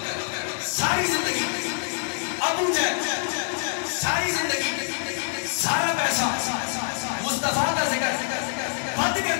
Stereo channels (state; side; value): silent; right; digital silence